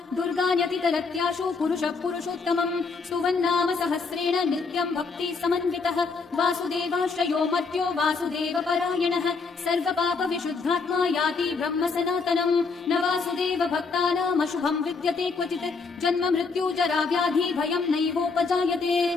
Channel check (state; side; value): quieter; right; 4.5 dB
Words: दुर्गान्यतितरत्याशु पुरुषः पुरुषोत्तमम् स्तुवन्नाम सहस्रेण नित्यं भक्ति समन्वितः वासुदेवाश्रयो मर्त्यो वासुदेवपरायणः सर्वपापविशुद्धात्मा याति ब्रह्म सनातनम् न वासुदेव भक्तानामशुभं विद्यते क्वचित् जन्म मृत्यु जरा व्याधि भयं नैवोपजायते